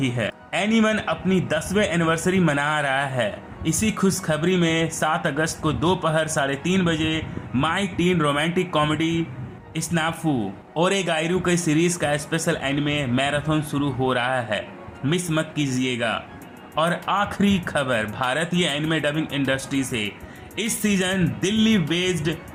है। एनीवन अपनी 10वें एनिवर्सरी मना रहा है। इसी खुशखबरी में 7 अगस्त को दोपहर 3:30 बजे माई टीन रोमांटिक कॉमेडी स्नाफू ओरेगाइरू के सीरीज का स्पेशल एनिमे मैराथन शुरू हो रहा है, मिस मत कीजिएगा। और आखिरी खबर भारतीय एनिमे डबिंग इंडस्ट्री से। इस सीजन दिल्ली बेस्ड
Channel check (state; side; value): identical; both; correlation 1.00